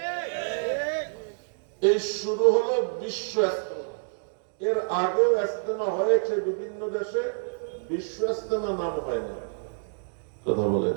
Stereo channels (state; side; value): silent; left; digital silence